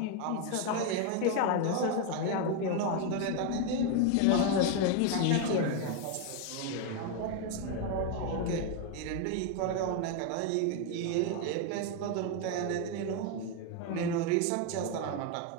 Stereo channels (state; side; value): different; both; correlation 0.01